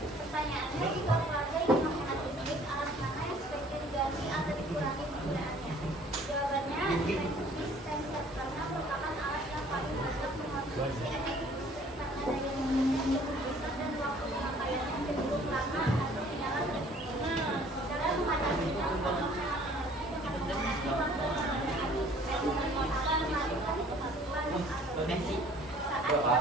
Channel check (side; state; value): both; normal; correlation 0.55